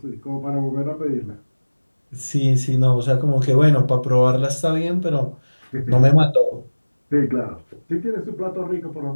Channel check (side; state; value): both; inverted; correlation -1.00